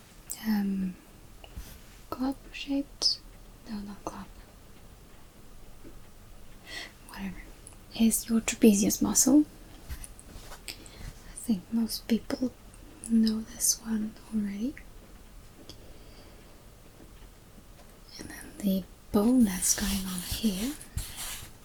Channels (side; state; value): both; identical; correlation 1.00